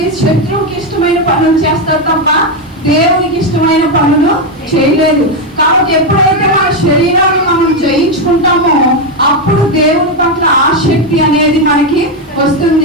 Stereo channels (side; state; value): both; normal; correlation 0.06